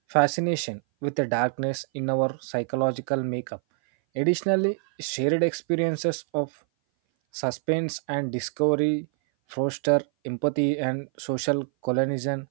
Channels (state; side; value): silent; left; 58 dB below the other